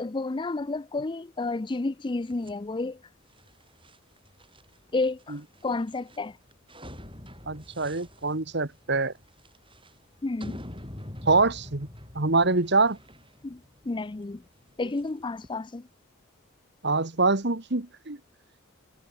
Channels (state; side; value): normal; both; correlation -0.14